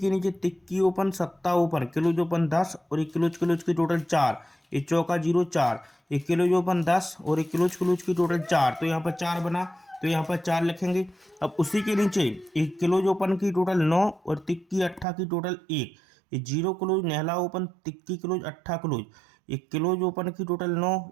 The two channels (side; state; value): left; drops out; at 15.1 s